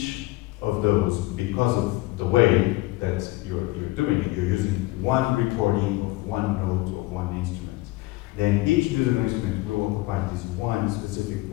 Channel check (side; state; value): right; quieter; 20.2 dB